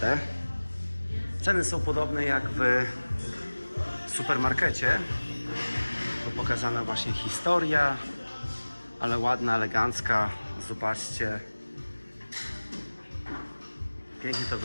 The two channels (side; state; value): both; inverted; correlation -1.00